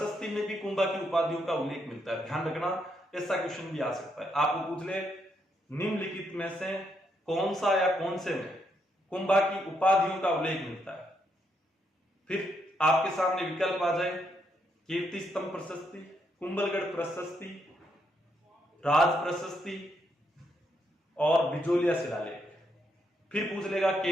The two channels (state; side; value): normal; both; correlation 0.77